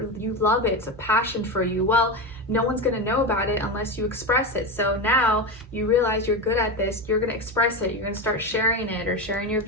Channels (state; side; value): normal; both; correlation 0.17